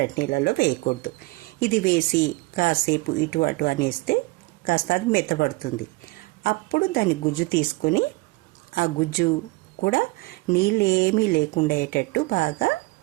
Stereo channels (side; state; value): left; quieter; 23.1 dB